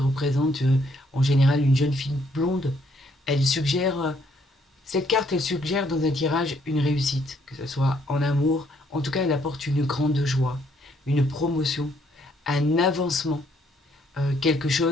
en général une jeune fille blonde. Elle suggère, cette carte, elle suggère dans un tirage une réussite, que ce soit en amour. En tout cas, elle apporte une grande joie, une promotion, un avancement, quelque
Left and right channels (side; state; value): both; normal; correlation 0.69